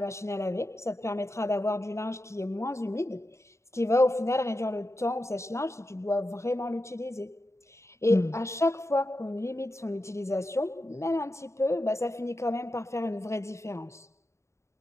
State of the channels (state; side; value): late; right; 0.14 ms